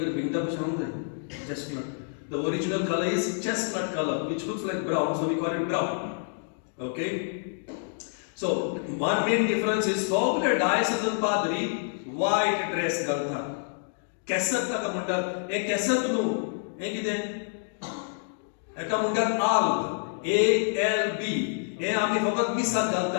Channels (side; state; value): right; silent; digital silence